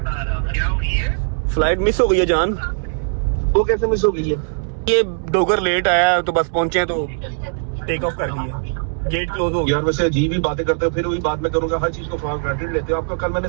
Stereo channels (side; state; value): left; silent; digital silence